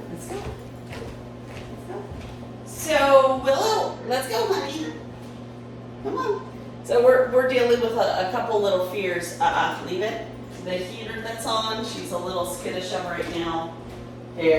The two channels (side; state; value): both; identical; correlation 1.00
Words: Let's go. So, Willow, let's go, honey. Come on. So we're dealing with a couple little fears. Leave it. The heater that's on, she's a little skittish of right now.